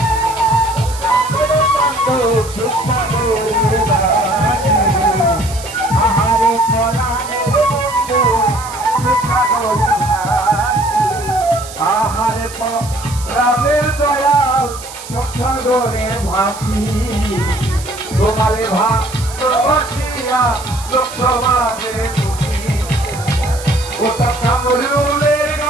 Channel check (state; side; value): noise; right; hiss, 14 dB below the sound